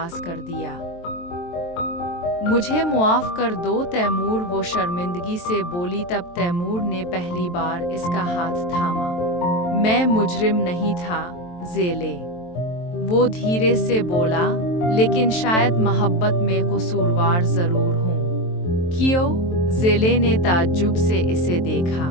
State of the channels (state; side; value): late; right; 23 ms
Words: कर दिया। मुझे मुआफ़ कर दो तैमूर, वो शर्मिंदगी से बोली। तब तैमूर ने पहली बार इसका हाथ थामा। मैं मुजरिम नहीं था ज़ेले, वो धीरे से बोला, लेकिन शायद मोहब्बत में कसूरवार ज़रूर हूँ। क्यों? ज़ेले ने ताज्जुब से इसे देखा।